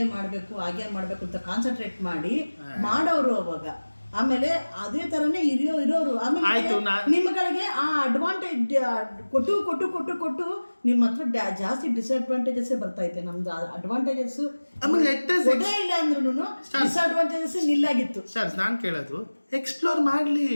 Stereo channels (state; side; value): inverted; both; correlation -1.00